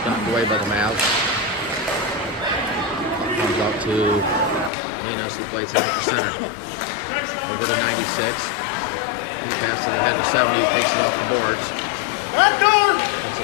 knocked away by the Mavs. Puck comes out to Linas, who plays it out to center. Over to 96. He passes it ahead to 70. Who takes it off the boards. Takes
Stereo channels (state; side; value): drops out; right; at 4.7 s